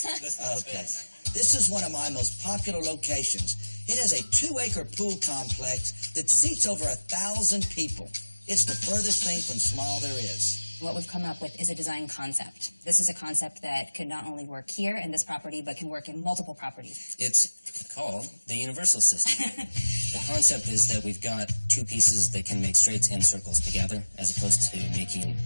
Okay. This is one of my most popular locations. It has a 2-acre pool complex that seats over 1,000 people. It's the furthest thing from small there is. What we've come up with is a design concept. This is a concept that could not only work here in this property, but can work in multiple properties. It's called the universal system. The concept is that we've got two pieces that can make straights and circles together, as opposed to making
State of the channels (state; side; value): inverted; both; correlation -1.00